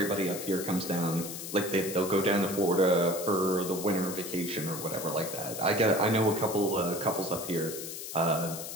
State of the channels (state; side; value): noise; left; hiss, 8 dB below the sound